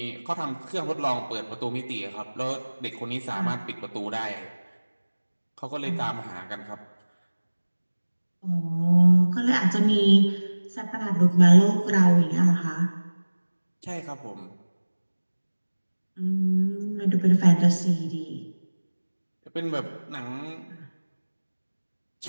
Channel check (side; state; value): both; inverted; correlation -1.00